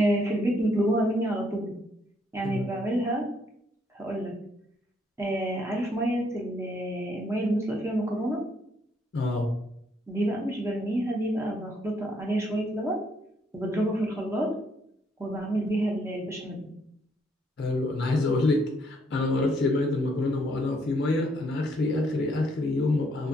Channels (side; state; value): both; normal; correlation 0.71